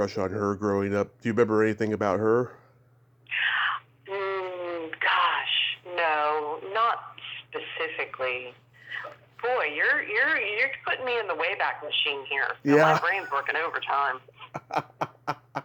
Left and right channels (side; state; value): both; identical; correlation 1.00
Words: on her growing up. Do you remember anything about her? Gosh, no, not specifically. Boy, you're putting me in the Wayback Machine here. So Yeah. My brain's working overtime.